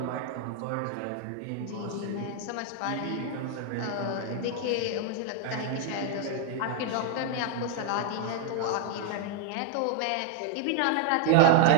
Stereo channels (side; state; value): both; different; correlation 0.00